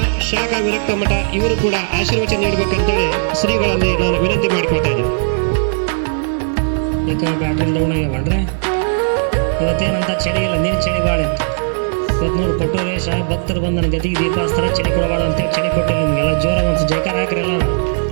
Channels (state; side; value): silent; left; 63 dB below the other